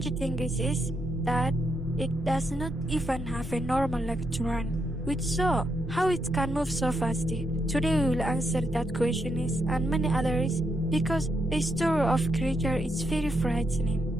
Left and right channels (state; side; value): normal; both; correlation 0.80